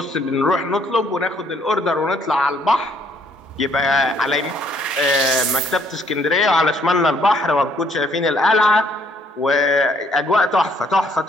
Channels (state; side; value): normal; both; correlation 0.66